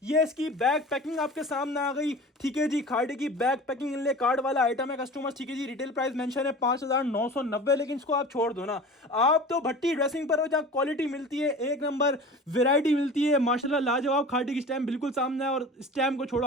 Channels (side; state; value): both; normal; correlation 0.37